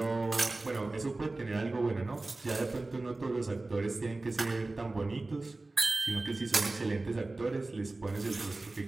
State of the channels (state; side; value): quieter; left; 3.1 dB